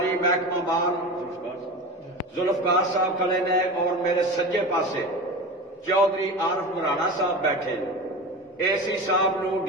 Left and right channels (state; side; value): normal; both; correlation 0.29